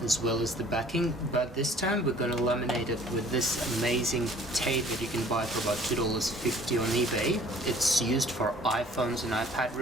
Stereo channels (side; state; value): both; normal; correlation 0.52